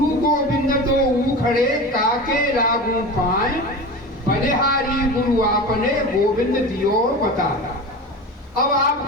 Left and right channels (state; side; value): normal; both; correlation 0.30